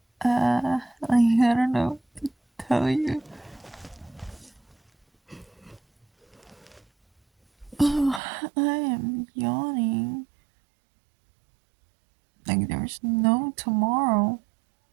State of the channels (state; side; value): drops out; left; at 8.2 s